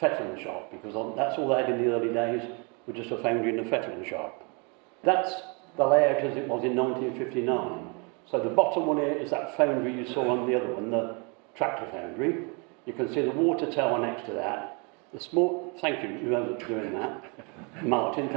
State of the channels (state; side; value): quieter; left; 33.2 dB